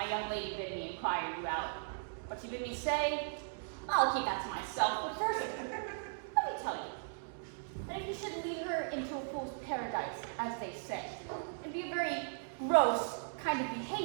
young lady bid me inquire you out. What she bid me say, I'll keep that to myself. But first, let me tell you that if you should lead her into a fool's paradise, as they say, it'd be a very gross kind of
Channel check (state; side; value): silent; left; digital silence